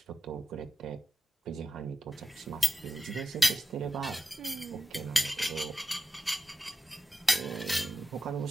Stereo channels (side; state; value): both; normal; correlation 0.92